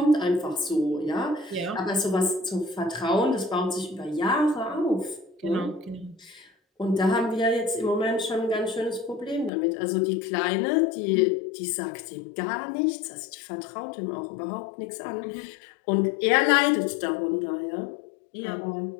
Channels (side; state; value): right; drops out; at 9.5 s